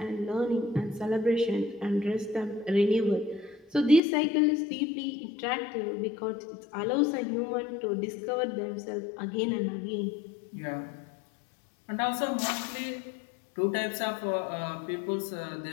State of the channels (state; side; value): drops out; right; at 4.0 s